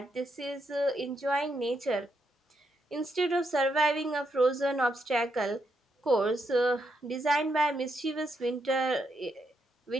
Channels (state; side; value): normal; both; correlation 0.79